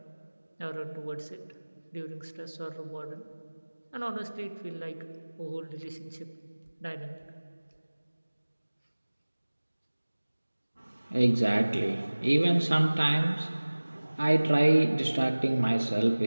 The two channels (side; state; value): both; inverted; correlation -1.00